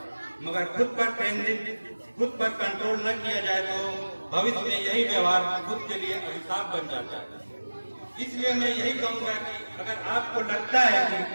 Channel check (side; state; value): both; inverted; correlation -1.00